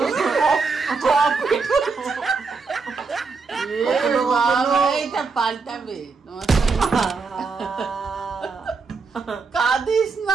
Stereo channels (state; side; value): quieter; left; 4.6 dB